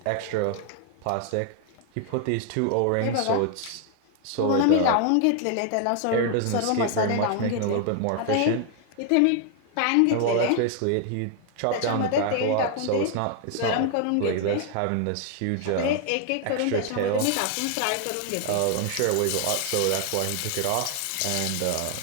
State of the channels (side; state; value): both; different; correlation 0.00